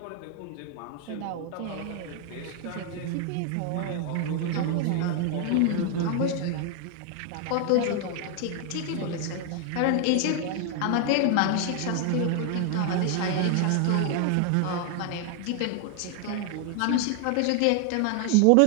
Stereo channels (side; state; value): both; different; correlation 0.00